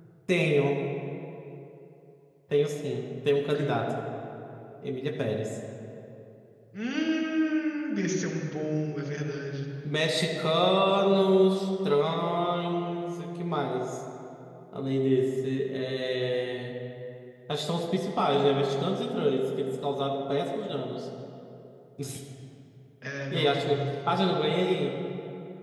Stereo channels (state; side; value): identical; both; correlation 1.00